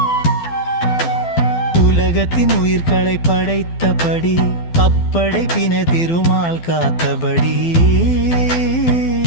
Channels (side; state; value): right; late; 12 ms